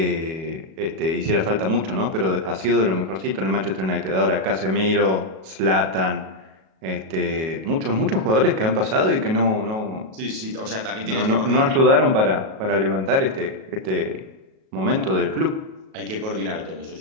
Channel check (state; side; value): late; left; 37 ms